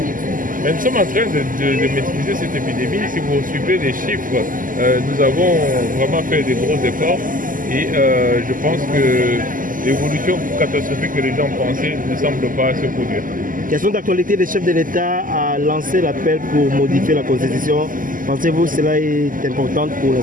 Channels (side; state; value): left; late; 0.40 ms